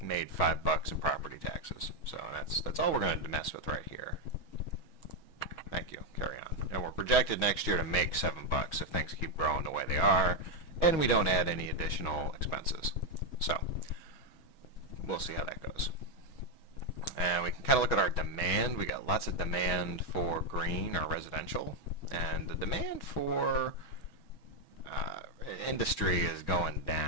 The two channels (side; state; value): right; late; 6.2 ms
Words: $5 in property taxes. So that's all we're going to mess with right here. Thank you. Carry on. And we're projected next year to make $7 if things keep growing the way they are, and we don't add any additional expenses. So we'll see how that goes. And we can kind of look at our demand. We got lots of demand for green or residential, and the demand for industry is going